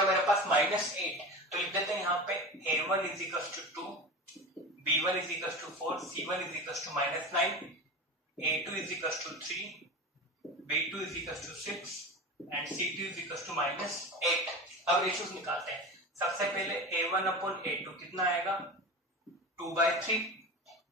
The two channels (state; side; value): normal; both; correlation 0.28